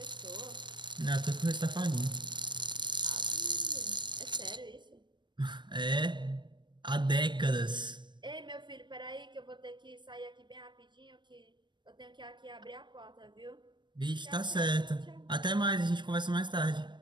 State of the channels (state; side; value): late; left; 0.22 ms